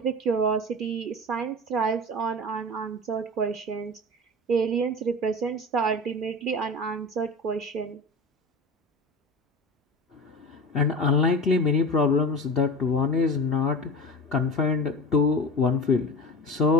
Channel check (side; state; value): both; normal; correlation 0.31